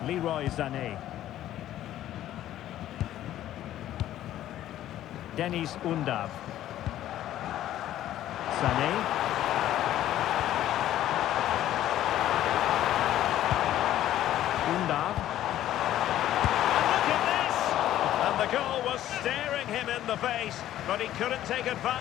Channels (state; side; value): quieter; right; 12.8 dB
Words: Leroy Sané. Dennis Undav. Sané. Undav. And look at this! And the goal was staring him in the face, but he couldn't take